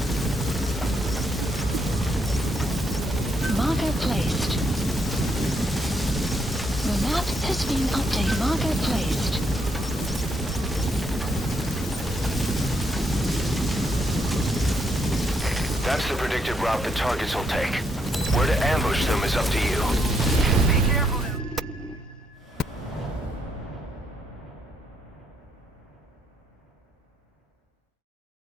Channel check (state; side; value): normal; both; correlation 0.75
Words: Marker placed. The map has been updated. Marker placed. That's the predicted route the targets will take. Where to ambush them is up to you. Be careful now.